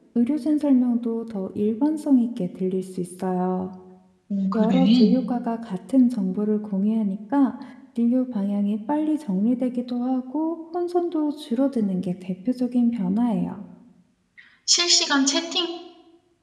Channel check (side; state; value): both; identical; correlation 1.00